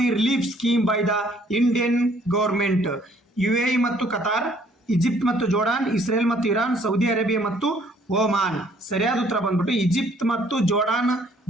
the relief scheme by the Indian government. UAE ಮತ್ತು ಕತಾರ್, ಈಜಿಪ್ಟ್ ಮತ್ತು ಜೋರ್ಡಾನ್, ಇಸ್ರೇಲ್ ಮತ್ತು ಇರಾನ್, ಸೌದಿ ಅರೇಬಿಯಾ ಮತ್ತು ಓಮಾನ್. ಸರಿಯಾದ ಉತ್ತರ ಬಂದ್ಬಿಟ್ಟು ಈಜಿಪ್ಟ್ ಮತ್ತು ಜೋರ್ಡಾನ್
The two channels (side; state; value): both; normal; correlation 0.61